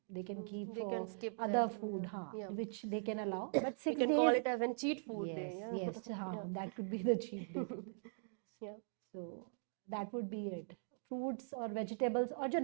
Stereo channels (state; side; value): silent; left; digital silence